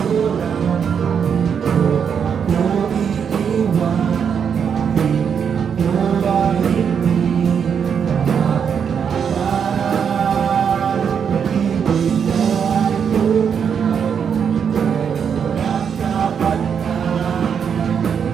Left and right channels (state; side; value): quieter; left; 7.2 dB